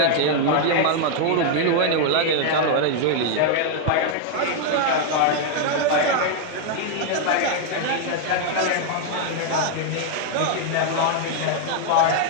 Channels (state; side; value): different; both; correlation 0.00